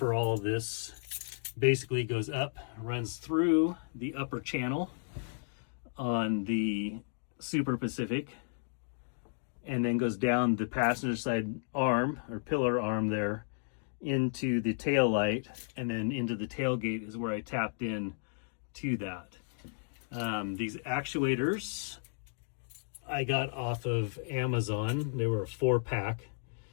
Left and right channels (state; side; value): silent; right; digital silence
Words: all of this basically goes up, runs through the upper channel on the Super Pacific, and then goes down the passenger side arm or pillar arm there into the tail light, and then into the tailgate is where I tapped in to that. These actuators I got off of Amazon. They were a 4-pack.